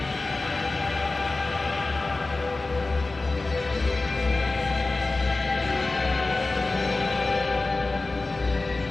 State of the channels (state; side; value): quieter; right; 3.3 dB